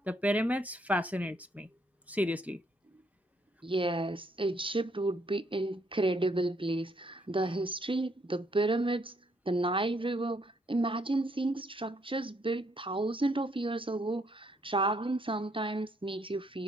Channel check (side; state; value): both; normal; correlation 0.71